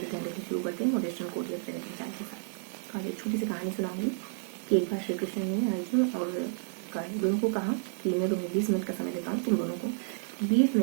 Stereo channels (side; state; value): left; silent; 57 dB below the other